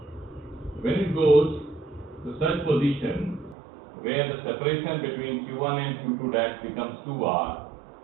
When it goes to such position where the separation between Q1 and Q2 dash becomes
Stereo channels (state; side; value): drops out; left; at 3.6 s